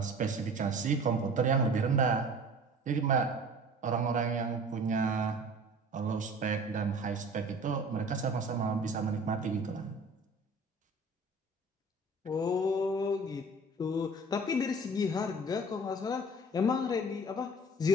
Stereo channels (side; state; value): both; normal; correlation 0.44